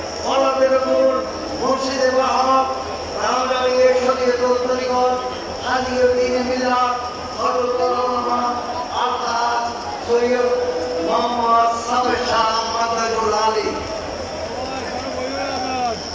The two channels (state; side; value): identical; both; correlation 1.00